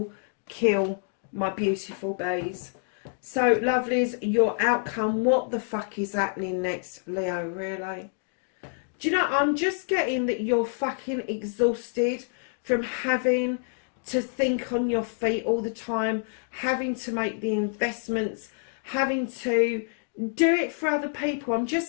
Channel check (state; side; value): silent; right; digital silence